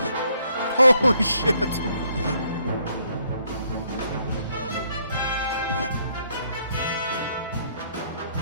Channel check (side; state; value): both; inverted; correlation -0.69